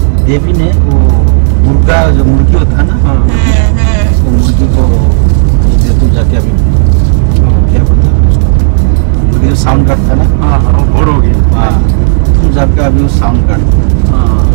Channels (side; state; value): left; silent; digital silence